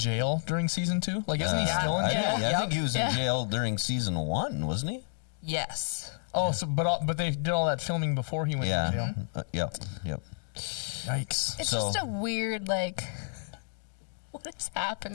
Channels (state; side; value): silent; right; 58 dB below the other